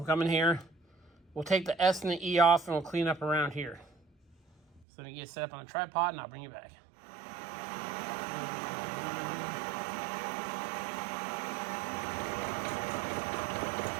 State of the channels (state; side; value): drops out; left; at 4.9 s